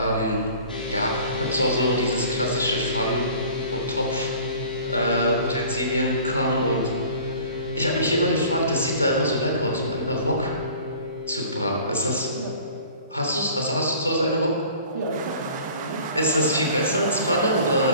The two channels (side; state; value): both; inverted; correlation -0.47